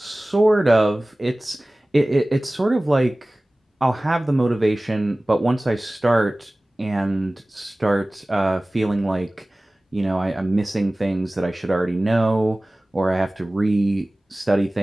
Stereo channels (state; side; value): normal; both; correlation 0.98